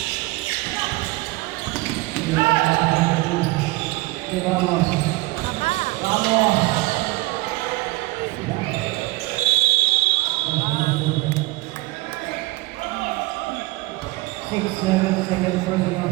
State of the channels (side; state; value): left; quieter; 21.2 dB